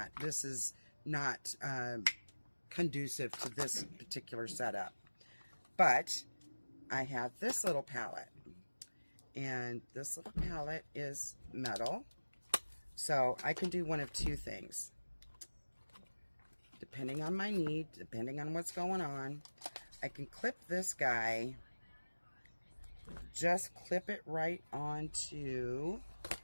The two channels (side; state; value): both; inverted; correlation -1.00